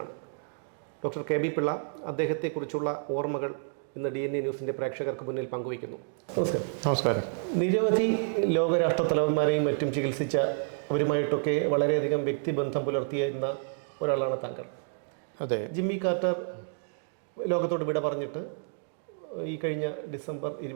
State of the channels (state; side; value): silent; left; digital silence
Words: ഡോക്ടർ കെ ബി പിള്ള അദ്ദേഹത്തെക്കുറിച്ചുള്ള ഓർമ്മകൾ ഇന്ന് DNA ന്യൂസിൻ്റെ പ്രേക്ഷകർക്ക് മുന്നിൽ പങ്കുവയ്ക്കുന്നു. നമസ്കാരം. നമസ്കാരം. നിരവധി ലോകരാഷ്ട്ര തലവന്മാരെയും മറ്റും ചികിത്സിച്ച അവരുമായിട്ടൊക്കെ വളരെയധികം വ്യക്തിബന്ധം പുലർത്തിയിരുന്ന ഒരാളാണ് താങ്കൾ. അതെ. ജിമ്മി കാർട്ടർ ലോകത്തോട് വിട പറഞ്ഞിട്ട് ഈ കഴിഞ്ഞ ഡിസംബർ